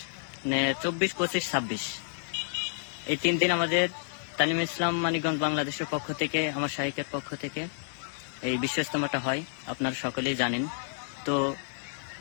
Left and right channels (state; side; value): silent; right; digital silence